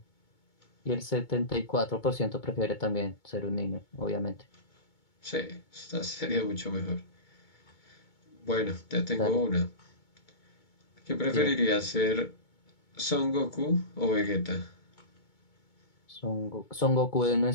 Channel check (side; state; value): right; late; 2.2 ms